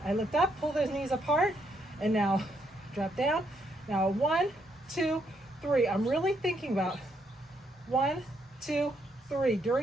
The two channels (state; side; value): normal; both; correlation 0.75